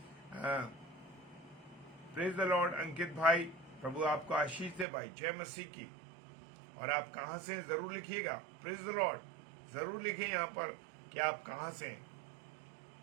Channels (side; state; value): left; drops out; at 4.9 s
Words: प्रेज द लॉर्ड अंकित भाई, प्रभु आपको आशीष दे भाई, जय मसीह की। और आप कहां से हैं जरूर लिखिएगा, प्रेज द लॉर्ड जरूर लिखिए यहां पर कि आप कहां से हैं।